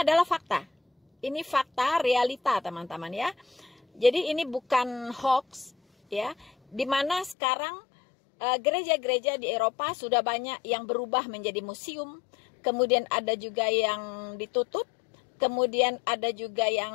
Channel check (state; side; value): drops out; right; at 7.4 s